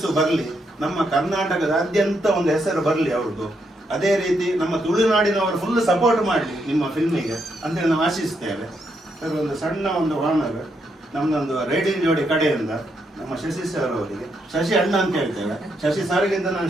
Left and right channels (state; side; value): normal; both; correlation 0.78